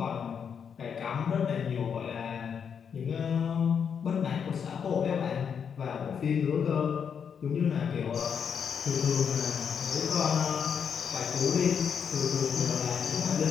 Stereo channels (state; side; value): quieter; right; 7.2 dB